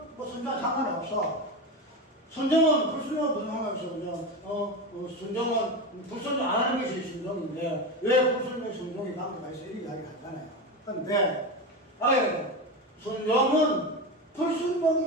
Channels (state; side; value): normal; both; correlation 0.19